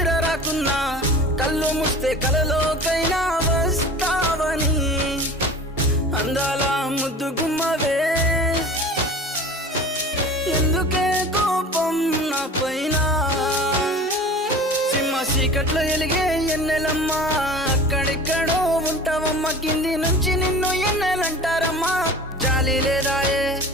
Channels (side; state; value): both; normal; correlation 0.39